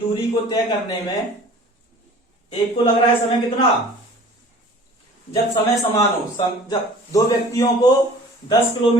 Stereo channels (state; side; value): normal; both; correlation 0.47